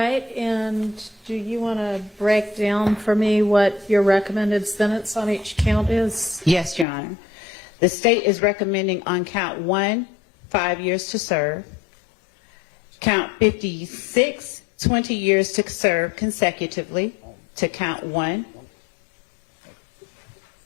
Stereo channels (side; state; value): right; drops out; at 6.9 s